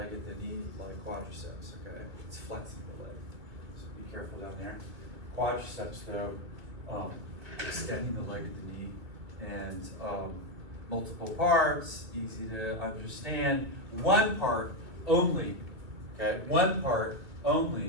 at the knee like quadriceps. Okay, it's flexing the leg. So be careful down there. Quadriceps, though, extending the leg at the knee, and multiple parts, easy to understand. One part only, okay? One part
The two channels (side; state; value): left; late; 2.4 ms